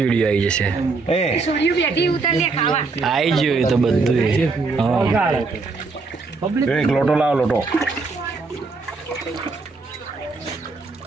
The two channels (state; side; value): quieter; left; 4.0 dB